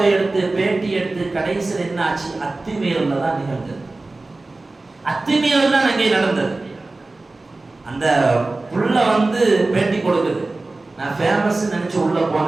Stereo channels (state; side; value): quieter; left; 3.2 dB